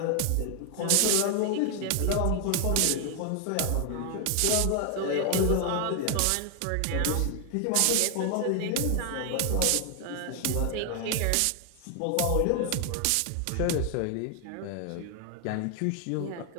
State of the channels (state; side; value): different; both; correlation 0.00